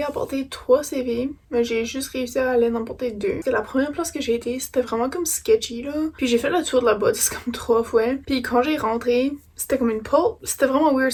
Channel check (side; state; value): both; identical; correlation 1.00